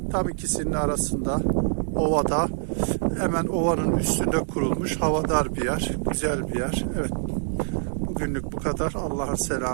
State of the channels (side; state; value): left; silent; digital silence